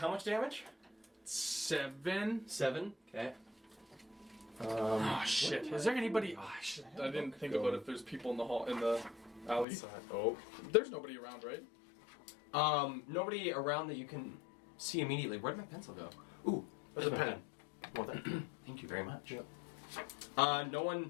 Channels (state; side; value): drops out; right; at 9.7 s